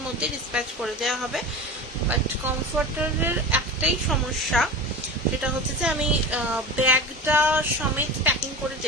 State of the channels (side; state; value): both; normal; correlation 0.30